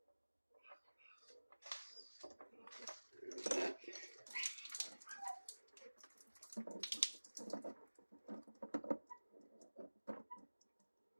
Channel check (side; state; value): both; inverted; correlation -1.00